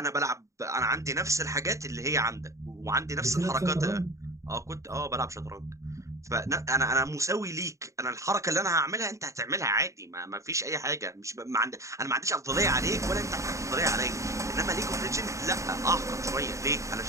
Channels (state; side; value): late; left; 0.15 ms